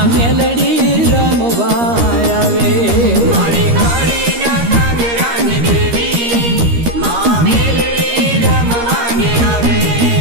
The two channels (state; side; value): late; left; 13 ms